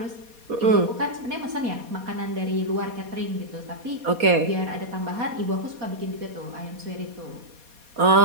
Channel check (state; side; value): late; left; 4.2 ms